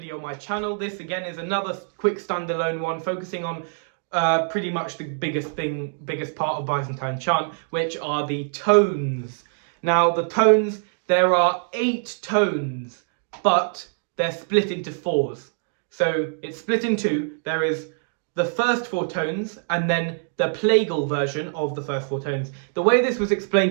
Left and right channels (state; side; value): silent; left; digital silence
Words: on my channel. This again is another quick standalone one focusing on pretty much the biggest part of Byzantine chant, which are the tones. Now the tones, there are 8 tones, but they're split into 4s. So it's split in 2. There is the first 4 tones and then the plagal version of the first 4 tones. The way this was